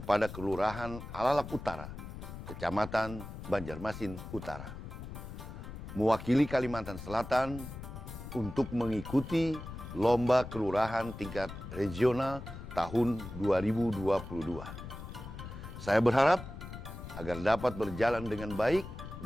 Kelurahan Alalak Utara, Kecamatan Banjarmasin Utara, mewakili Kalimantan Selatan untuk mengikuti Lomba Kelurahan tingkat regional tahun 2022. Saya berharap agar dapat berjalan dengan baik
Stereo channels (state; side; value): noise; left; rumble, 11 dB below the sound